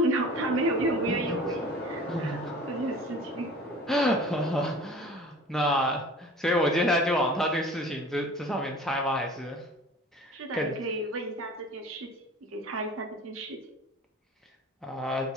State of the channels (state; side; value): normal; both; correlation 0.43